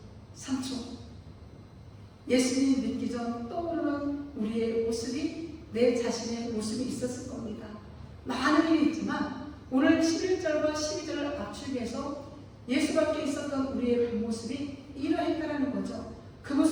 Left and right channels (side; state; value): both; identical; correlation 1.00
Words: 3초. 예수님 믿기 전 떠오르는 우리의 모습이, 내 자신의 모습이 있었을 겁니다. 많은 일이 있지만 오늘 11절과 12절을 압축해서 예수밖에 있었던 우리의 그 모습이 이러했다는 거죠. 그